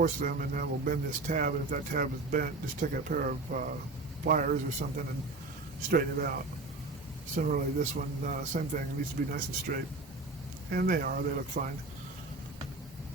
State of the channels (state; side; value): quieter; left; 3.2 dB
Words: them and that will bend this tab, and if that tab is bent, just take a pair of pliers or something and straighten it out. Similarly, this one, same thing, it needs to be nice and straight. And they look fine.